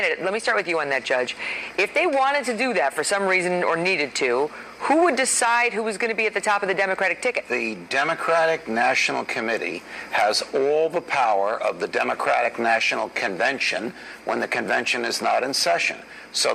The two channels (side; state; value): both; identical; correlation 1.00